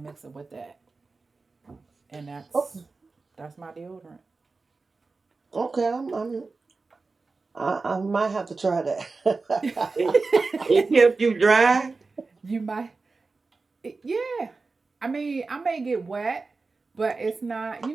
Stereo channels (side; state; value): left; quieter; 4.0 dB